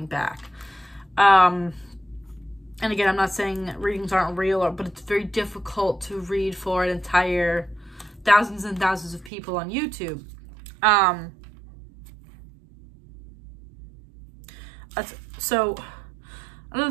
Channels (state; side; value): drops out; left; at 9.3 s